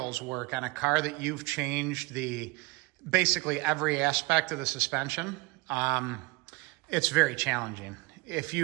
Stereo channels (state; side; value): quieter; left; 23.7 dB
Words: work on a car that you've changed basically every aspect of the suspension, it's very challenging. If